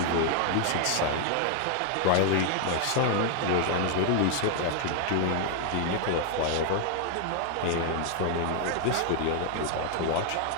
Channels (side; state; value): both; different; correlation 0.00